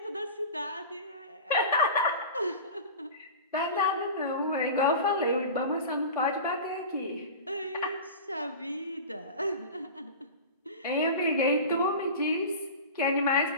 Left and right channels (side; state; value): both; inverted; correlation -0.32